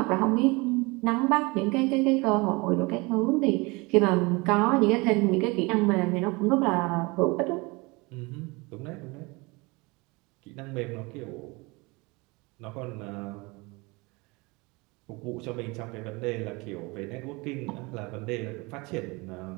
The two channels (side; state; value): left; quieter; 25.9 dB